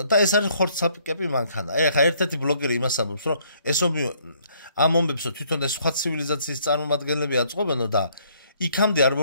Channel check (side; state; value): both; inverted; correlation -0.65